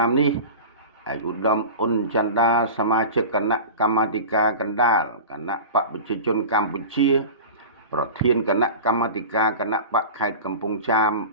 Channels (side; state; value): both; inverted; correlation -0.32